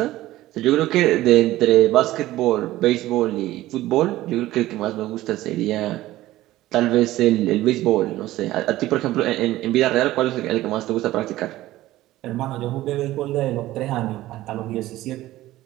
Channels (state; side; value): quieter; left; 15.9 dB